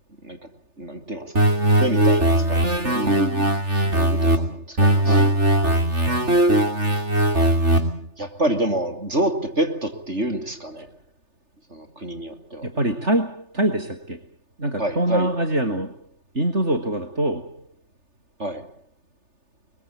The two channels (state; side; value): late; left; 3.3 ms